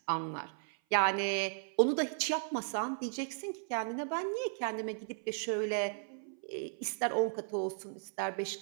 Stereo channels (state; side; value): silent; left; 54 dB below the other